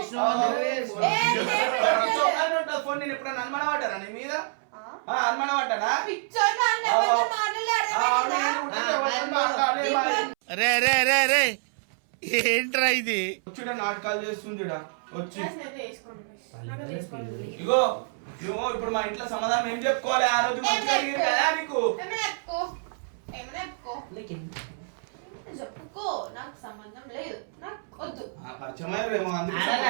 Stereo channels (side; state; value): left; silent; 60 dB below the other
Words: ఉంటుంది ఫోన్. నేను ఎప్పుడైనా అనుమానం పడ్డానా నీ మీద? అనుమానం పడ్డానా? ఏంట్రా ఇది? వచ్చుడ నాటకాలు చేస్తుంది వచ్చి. ఇగో నువ్వు ఇప్పుడు మా ఇంట్లో సమాధానం ఏం చెప్పుకోవాలి? ఆ రోజు మంచిగా అడిగింది కదా నీకు. చెప్పుకో. నాకు సంబంధం లేదు, నాకు వద్దు. పరిచయమేమో అందుకే